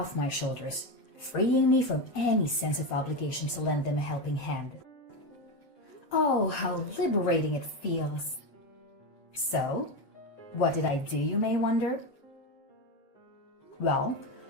my shoulders, freeing me from any sense of obligation to lend them a helping hand. Oh, how liberating it feels. So, what did I do, you may wonder? Well,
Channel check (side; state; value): right; late; 7.7 ms